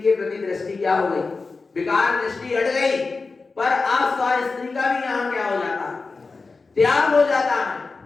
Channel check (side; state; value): right; quieter; 4.1 dB